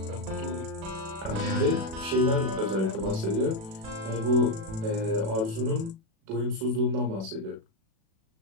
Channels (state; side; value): late; left; 36 ms